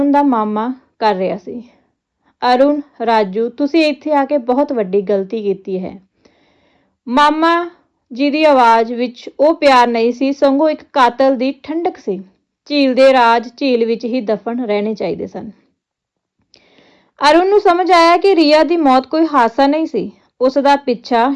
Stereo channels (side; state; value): both; identical; correlation 1.00